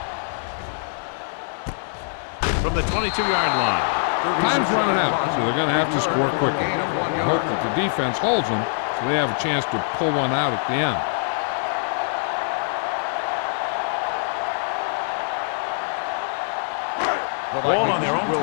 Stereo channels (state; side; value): silent; right; digital silence